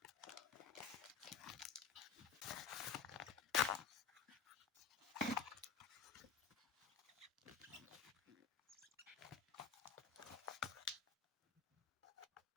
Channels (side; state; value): right; quieter; 6.5 dB